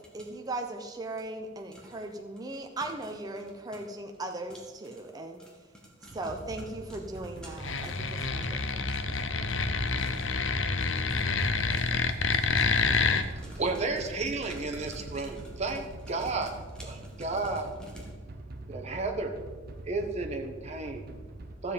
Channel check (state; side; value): normal; both; correlation 0.32